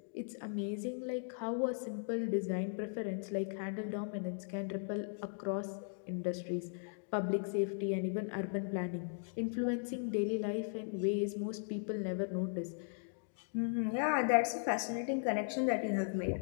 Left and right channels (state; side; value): silent; right; digital silence